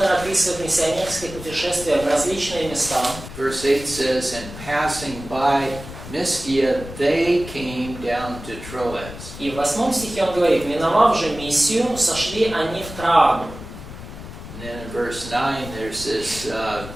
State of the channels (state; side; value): noise; left; rumble, 12 dB below the sound